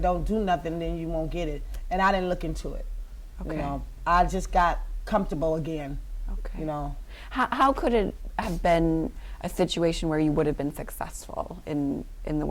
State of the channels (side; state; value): both; identical; correlation 1.00